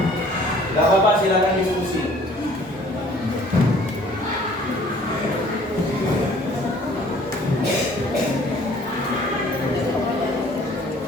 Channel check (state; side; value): normal; both; correlation 0.54